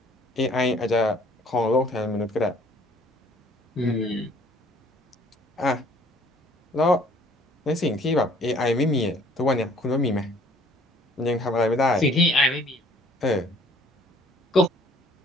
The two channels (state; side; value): normal; both; correlation 0.57